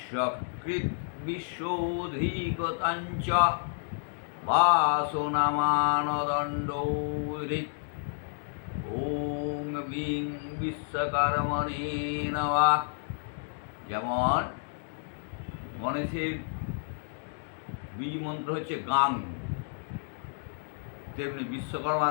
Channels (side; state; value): right; silent; digital silence